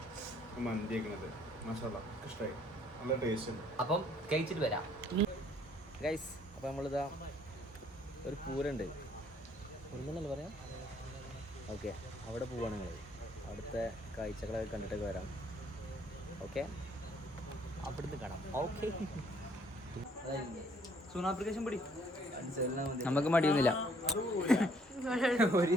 മന്തി കഴിക്കണത്. മാഷാല്ലാ ഇഷ്ടമായി, നല്ല ടേസ്റ്റ് ഉണ്ട്. അപ്പം കഴിച്ചിട്ട് വരാം ഗൈസ്. അപ്പം നമ്മളിതാ ഒരു പൂരണ്ട് ഒന്നല്ലേ പറയാം. ഓക്കെ, അവിടെ പോവാണ് നിങ്ങൾ. അവിടുത്തെ കാഴ്ചകളൊക്കെ കണ്ടിട്ടൊക്കെ വരാം. ഓക്കെ, അവിടുന്ന് കാണാം. ഓക്കെ, സൂൺ ആപ്ലിക്കേഷൻ പിടി. നമുക്ക് മടിയൊന്നുമില്ല,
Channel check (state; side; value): normal; both; correlation 0.63